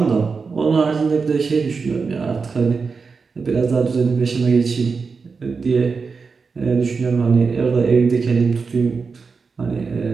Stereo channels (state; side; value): quieter; left; 4.9 dB